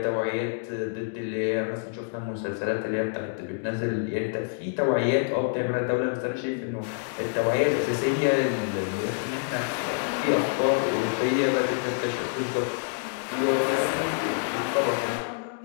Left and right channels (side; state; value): right; silent; digital silence